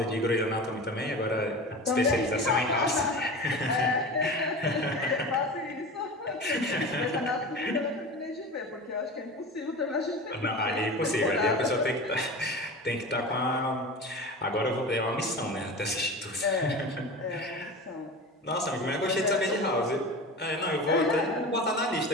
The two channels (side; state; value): both; normal; correlation 0.31